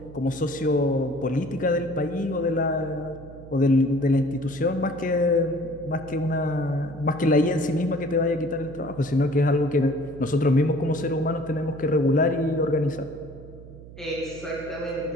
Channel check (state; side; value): noise; right; hum, 17 dB below the sound